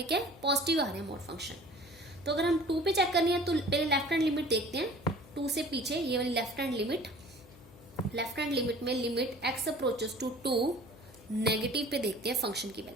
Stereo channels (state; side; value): noise; left; hum, 22 dB below the sound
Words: क्या है पॉजिटिव आ रहा है मोड फंक्शन। तो अगर हम 2 पे चेक करनी है तो पहले लेफ्ट हैंड लिमिट देखते हैं, 2 से पीछे ये वाली लेफ्ट हैंड लिमिट में limit x approaches to 2 negative पे देखते हैं फंक्शन की